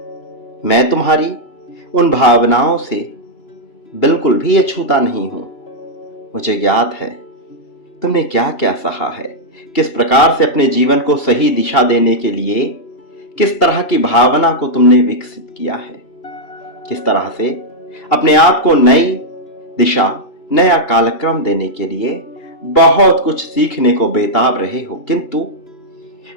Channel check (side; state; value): right; late; 2.8 ms